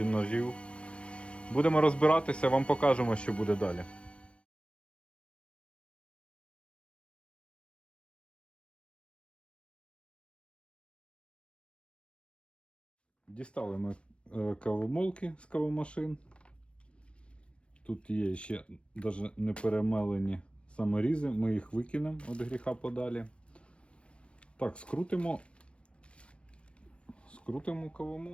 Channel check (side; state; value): right; late; 0.060 ms